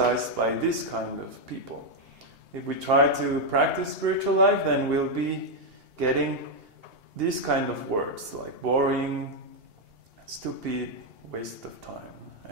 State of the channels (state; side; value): late; left; 2.8 ms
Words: by this kind of people. If we try to practice spiritual life, then we'll be getting these kind of words like boring, stupid, waste of time.